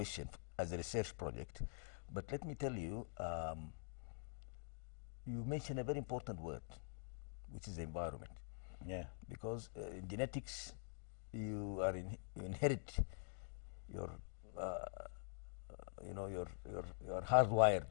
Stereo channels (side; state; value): right; silent; digital silence